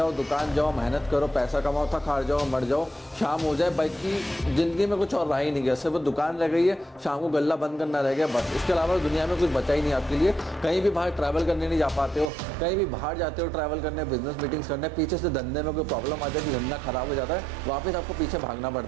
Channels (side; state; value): left; drops out; at 12.3 s